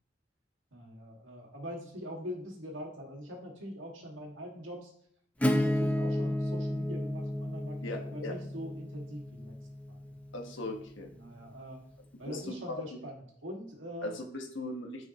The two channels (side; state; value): both; normal; correlation 0.80